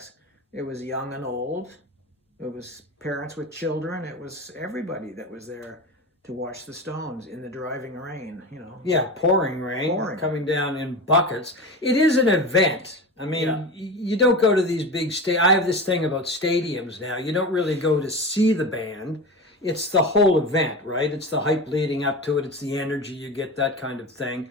it was young and old. It was parents with children. It was everybody that was there to watch the Stones in the driving rain. Yeah, pouring rain, coming down in buckets. It is an event. I mean, You don't go to these big I have this thing about stadiums now. You don't really go to see the band. It's the whole event, right? It's the hype leading up to it. It's the energy you get, that kind of thing.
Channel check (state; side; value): normal; both; correlation 0.27